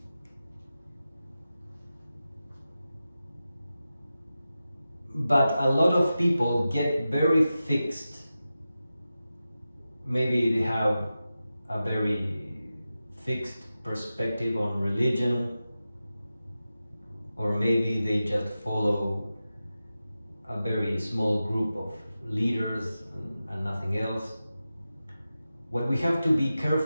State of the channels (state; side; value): inverted; both; correlation -0.93